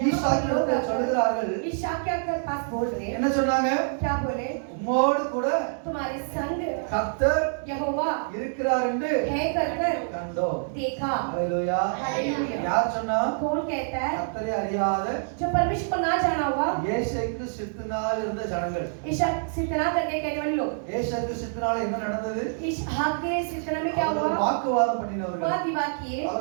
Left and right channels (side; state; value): left; silent; 61 dB below the other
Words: ஈசாக்கிற்கு சொல்லுகிறார்கள், ईशा क्या कर पास बोल रहे हैं, என்ன சொன்னாங்க? क्या बोले? உம்மோடு கூட तुम्हारे संग கர்த்தர் यहोवा இருக்கிறார் என்று है कर कर கண்டோம். देखा। ஹalleluya. हालेलुया। யார் சொன்னா? कौन कहता है? கர்த்தரை அறியாத जो परमेश्वर को ना जाना हुआ, ஏசைக்கு சித்தனால் இருந்த ஜனங்கள். ईशा सितना करके कहने वाले लोग। ஏசைக்கு சித்தனால என்ன நடந்தது? ईशा के सितना में क्या हुआ? வாக்குவாதம் பண்ணினவர்கள், वाद विवाद किए,